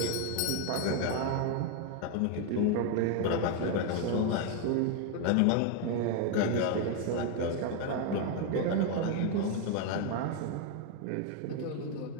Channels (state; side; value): different; both; correlation 0.01